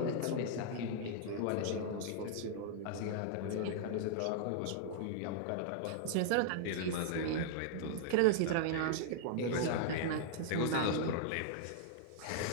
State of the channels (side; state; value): both; different; correlation -0.01